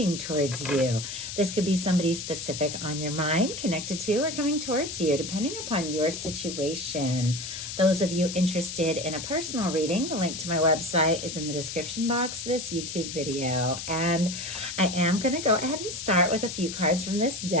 towards you. This could be somebody specific on your mind, connected to, or coming towards you, depending upon your situation. Those of you interested in a personal reading, the link to my website is in the description box of this YouTube video. And I am going to go ahead and start with a few cards from this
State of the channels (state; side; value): noise; left; hiss, 7 dB below the sound